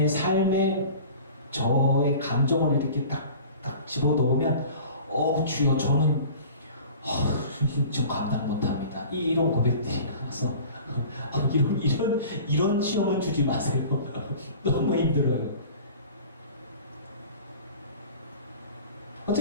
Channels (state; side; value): inverted; both; correlation -0.42